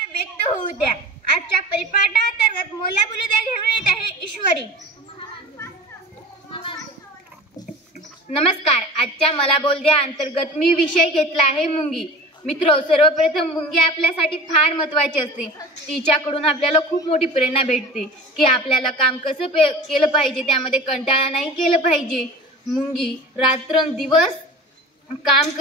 व्यक्त होऊ द्या। आजच्या परिपाठांतर्गत मोला बोलू द्या घेऊन येत आहे ईश्वरी। नमस्कार, आजच्या मला बोल द्या अंतर्गत मी विषय घेतला आहे मुंगी। मित्रो, सर्वप्रथम मुंगी आपल्यासाठी फार महत्त्वाची असते। तिच्याकडून आपल्याला खूप मोठी प्रेरणा भेटते की आपल्याला काम कसं केलं पाहिजे, त्यामध्ये कंटाळा नाही केलं पाहिजे। मुंगी रात्रंदिवस काम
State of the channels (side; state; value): both; normal; correlation 0.38